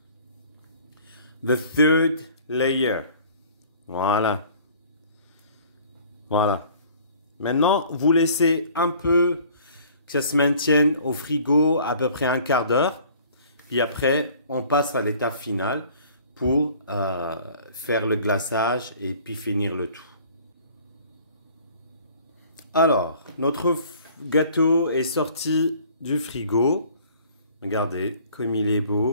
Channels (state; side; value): inverted; both; correlation -0.52